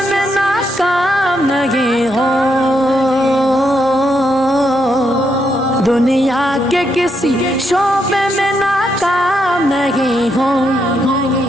میں ناکام نہیں ہو، دنیا کے کسی شعبے میں ناکام نہیں ہو،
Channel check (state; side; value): normal; both; correlation 0.79